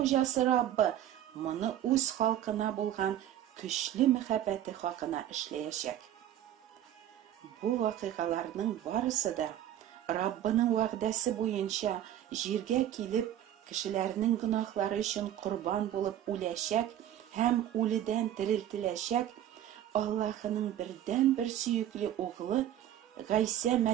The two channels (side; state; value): left; quieter; 11.5 dB